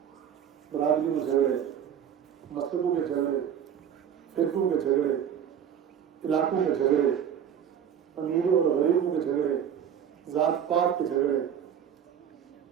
برادری میں جھگڑے، مذہبوں کے جھگڑے، فرقوں کے جھگڑے، علاقوں کے جھگڑے، امیروں اور غریبوں کے جھگڑے، ذات پات کے جھگڑے.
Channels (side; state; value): left; quieter; 8.8 dB